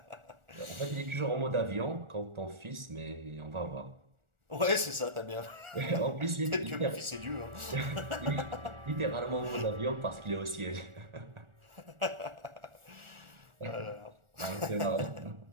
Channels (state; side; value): late; left; 1.4 ms